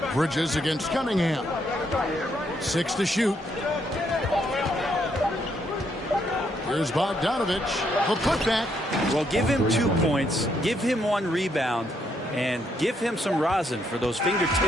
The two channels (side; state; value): both; normal; correlation 0.74